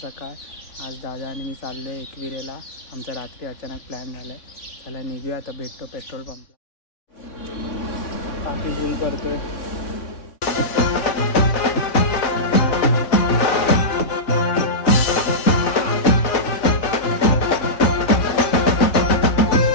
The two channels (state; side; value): late; right; 3.6 ms